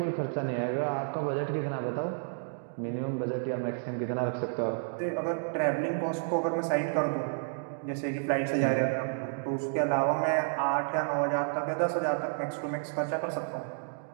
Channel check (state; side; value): silent; left; digital silence